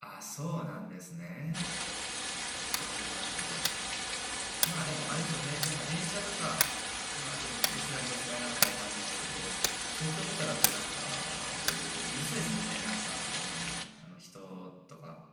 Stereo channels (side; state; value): both; identical; correlation 1.00